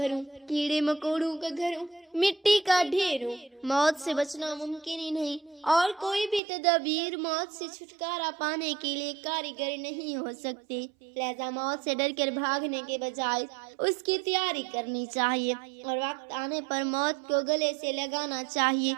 ہوں، کیڑے مکوڑوں کا گھر ہوں، مٹی کا ڈھیر ہوں۔ موت سے بچنا ممکن ہی نہیں، اور کوئی بھی تدابیر موت سے چھٹکارا پانے کے لیے کارگر نہیں ہو سکتی۔ لہذا موت سے ڈر کر بھاگنے کے بجائے اس کی تیاری کرنی چاہیے، اور وقت آنے پر موت کو گلے سے لگانا چاہیے۔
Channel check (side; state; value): left; drops out; at 6.4 s